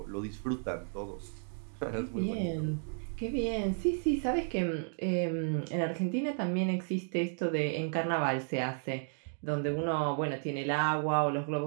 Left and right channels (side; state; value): left; silent; 56 dB below the other